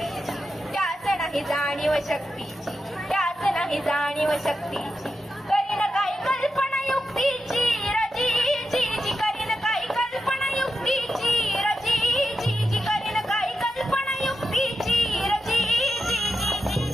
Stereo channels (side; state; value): both; normal; correlation 0.88